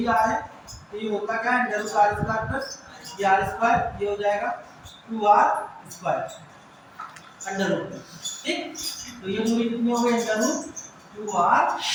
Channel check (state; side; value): identical; both; correlation 1.00